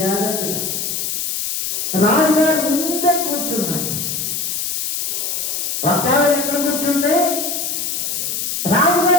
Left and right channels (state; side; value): noise; left; hiss, 2 dB below the sound